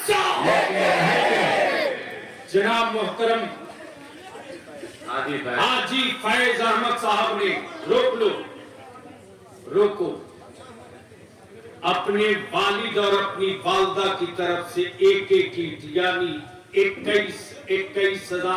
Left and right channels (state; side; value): identical; both; correlation 1.00